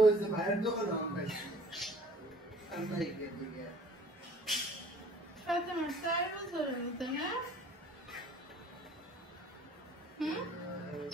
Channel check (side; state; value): both; normal; correlation 0.52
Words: ওই যে ভাইয়ের দোকানে আমি পাইছি আর নাই এদিকে সাথে আমার 4 বছর হইতো না